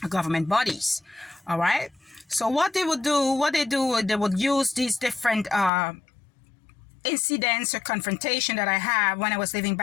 bodies. All right. So what they would use these different incidents or confrontation that I had when I was living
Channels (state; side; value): drops out; right; at 5.7 s